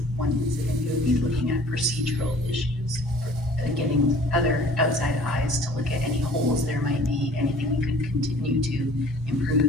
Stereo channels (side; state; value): both; normal; correlation 0.50